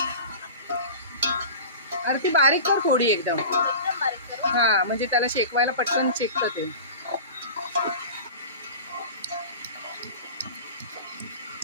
आरती बारीक कर थोडी एकदम बारीक करू। हा म्हणजे त्याला शेकवायला पटकन शेकतं ते।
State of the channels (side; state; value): both; inverted; correlation -0.35